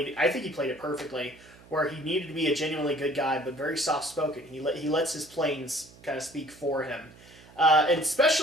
it perfectly, where he needed to be a genuinely good guy, but very soft-spoken. He lets his planes kind of speak for him. And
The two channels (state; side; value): noise; right; hum, 23 dB below the sound